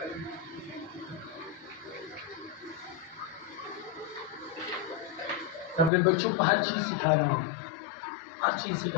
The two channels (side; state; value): right; drops out; at 5.9 s